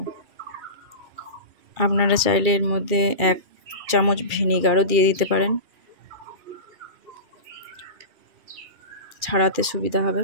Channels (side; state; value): left; late; 2.4 ms